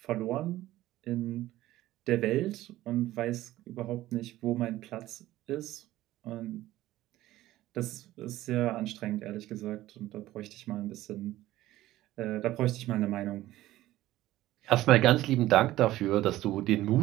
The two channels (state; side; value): quieter; left; 15.6 dB